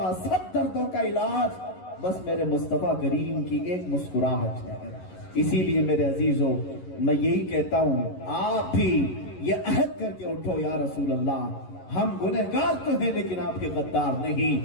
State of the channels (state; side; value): late; right; 11 ms